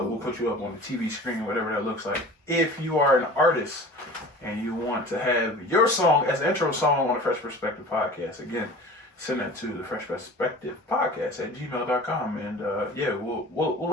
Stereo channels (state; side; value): normal; both; correlation 0.40